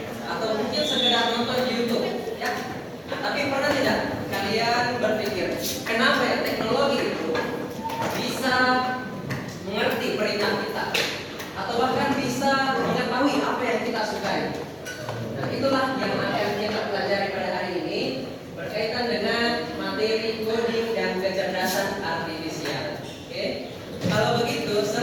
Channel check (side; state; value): both; identical; correlation 1.00